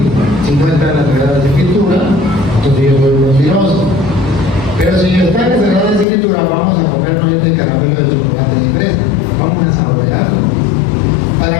Si no está en las Sagradas Escrituras, entonces yo soy mentiroso. Pero si está en las Sagradas Escrituras, vamos a comernos este caramelo de chocolate y fresa. Vamos a saborearlo.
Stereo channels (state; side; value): drops out; right; at 6.1 s